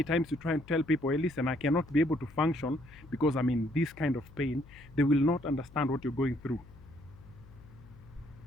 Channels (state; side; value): noise; left; hum, 21 dB below the sound